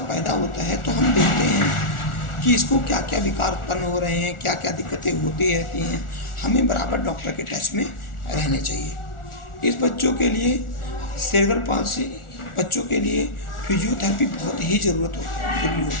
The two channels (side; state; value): right; late; 1.4 ms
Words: पैदा होता है तो हम देखते हैं कि इसको क्या क्या विकार उत्पन्न हो रहे हैं, क्या क्या दिक्कतें होती रहती हैं। हमें बराबर डॉक्टर के टच में रहने चाहिए। इस बच्चों के लिए सेरेब्रल पाल्सी बच्चों के लिए फिजियोथेरेपी बहुत ही जरूरी